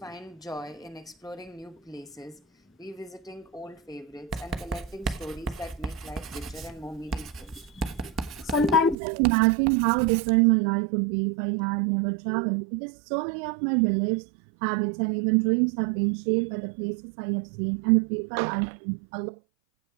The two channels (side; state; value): left; drops out; at 9.0 s